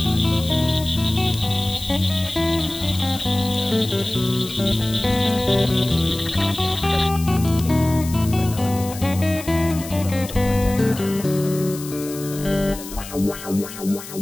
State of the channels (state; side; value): noise; left; hiss, 13 dB below the sound